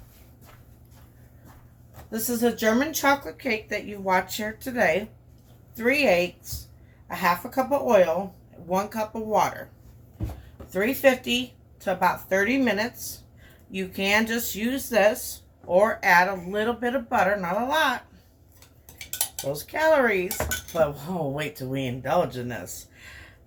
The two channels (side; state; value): both; identical; correlation 1.00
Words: This is a German chocolate cake that you watch here today. 3 eggs, a half a cup of oil, 1 cup of water. 350 to about 30 minutes. You can just use this or add a little bit of butter, not a lot. Those calories, but oh, wait till we indulge in this.